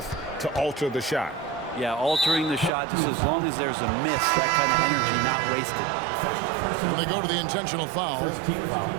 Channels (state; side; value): drops out; left; at 2.7 s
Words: to alter the shot. Yeah, altering the shot just as long as there's a miss, that kind of energy not wasted. And they go to the intentional foul.